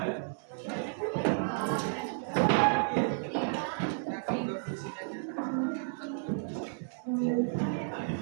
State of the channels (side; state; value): left; silent; 56 dB below the other